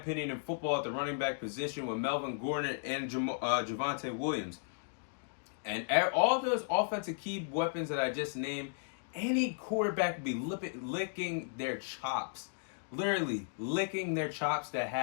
in football at the running back position with Melvin Gordon and Javonte Williams. And all those offensive key weapons that I just named, any quarterback would be licking their chops. Literally licking their chops to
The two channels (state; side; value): silent; right; digital silence